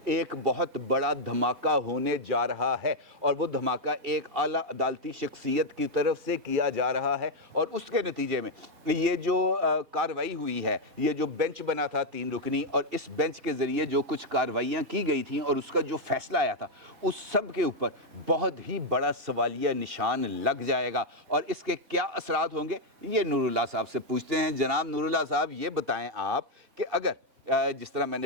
ایک بہت بڑا دھماکہ ہونے جا رہا ہے, اور وہ دھماکہ ایک اعلیٰ عدالتی شخصیت کی طرف سے کیا جا رہا ہے, اور اس کے نتیجے میں یہ جو کارروائی ہوئی ہے, یہ جو بینچ بنا تھا 3 رکنی, اور اس بینچ کے ذریعے جو کچھ کارروائیاں کی گئی تھیں اور اس کا جو فیصلہ آیا تھا اس سب کے اوپر بہت ہی بڑا سوالیہ نشان لگ جائے گا. اور اس کے کیا اثرات ہوں گے یہ نور اللہ صاحب سے پوچھتے ہیں. جناب نور اللہ صاحب, یہ بتائیں آپ کہ اگر جس طرح میں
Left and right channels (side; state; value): left; late; 3.2 ms